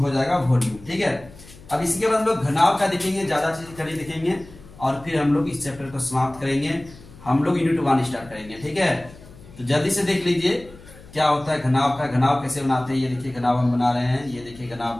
हो जाएगा वॉल्यूम। ठीक है, अब इसके बाद हम लोग घनाभ का देखेंगे, ज्यादा चीज कड़ी देखेंगे, और फिर हम लोग इस चैप्टर को समाप्त करेंगे। हम लोग यूनिट 1 स्टार्ट करेंगे। ठीक है, तो जल्दी से देख लीजिए क्या होता है घनाभ का। घनाभ कैसे बनाते हैं, ये देखिए घनाभ हम बना रहे हैं। ये देखिए घनाभ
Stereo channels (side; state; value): left; noise; hum, 21 dB below the sound